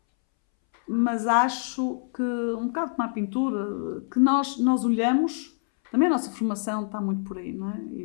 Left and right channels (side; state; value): right; silent; 61 dB below the other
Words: mas acho que, um bocado como a pintura, que nós olhamos, também a nossa formação está muito por aí, não é? E